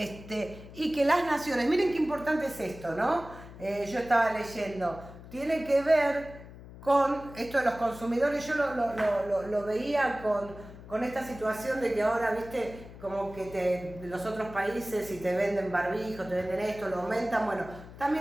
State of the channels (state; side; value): noise; left; hum, 16 dB below the sound